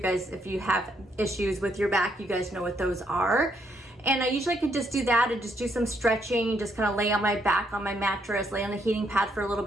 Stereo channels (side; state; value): both; normal; correlation 0.73